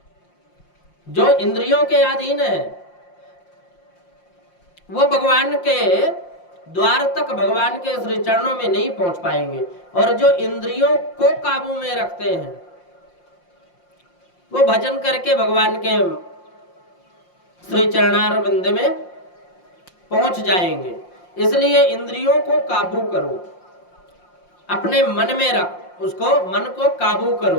जो इंद्रियों के अधीन है, वो भगवान के द्वार तक, भगवान के श्री चरणों में नहीं पहुंच पाएंगे। और जो इंद्रियों को काबू में रखते हैं, वो भजन करके भगवान के श्री चरणारविंद में पहुंच जाएंगे। इसलिए इंद्रियों को काबू करो, अपने मन में रख, उसको मन को काबू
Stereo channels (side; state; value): right; late; 5.7 ms